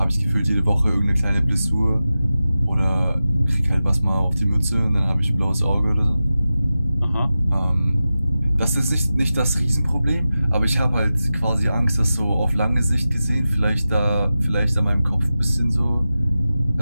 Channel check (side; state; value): both; inverted; correlation -0.94